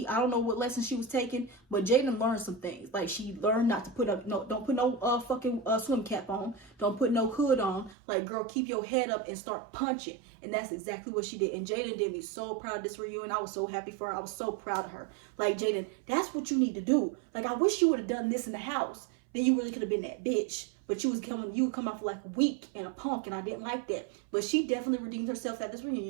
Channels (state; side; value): drops out; left; at 8.0 s